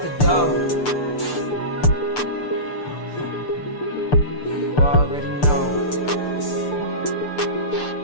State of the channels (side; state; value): right; late; 6.7 ms